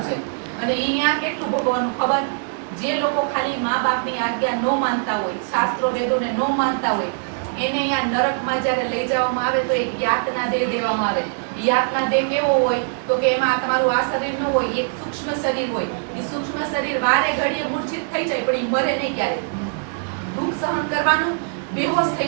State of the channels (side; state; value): left; silent; digital silence